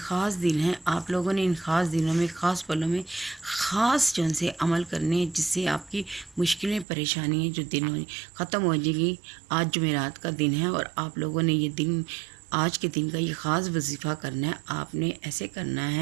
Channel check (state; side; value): drops out; left; at 6.9 s